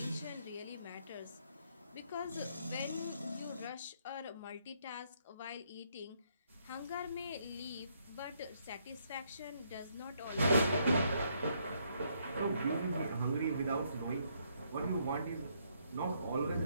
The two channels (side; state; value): both; inverted; correlation -0.72